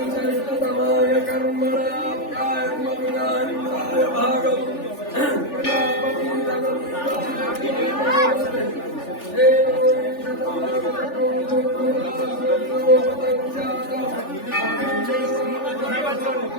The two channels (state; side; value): late; right; 3.4 ms